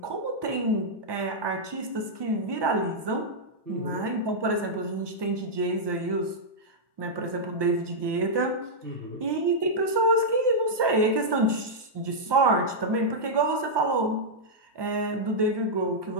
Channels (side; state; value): left; late; 1.2 ms